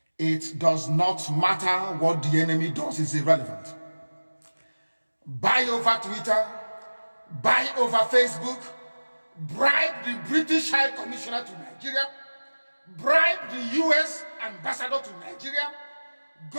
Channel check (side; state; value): both; inverted; correlation -1.00